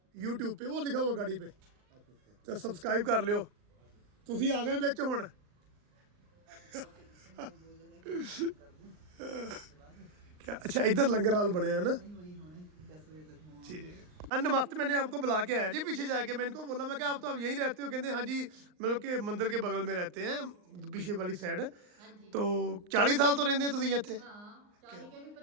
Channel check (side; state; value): left; late; 39 ms